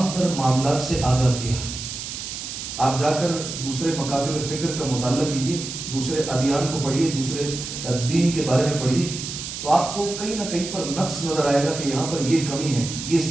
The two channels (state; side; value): noise; right; hiss, 7 dB below the sound